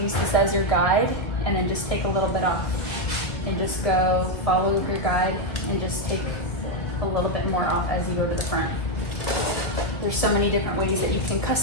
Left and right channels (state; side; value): late; right; 2.0 ms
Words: use this as your guide, and then just take a little bit off. And just go follow your guide and just take a little bit more off as you go to the front. There's so many different ways that you can